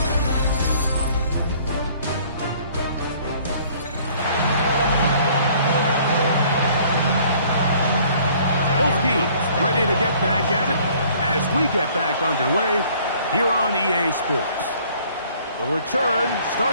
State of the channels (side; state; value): both; inverted; correlation -0.56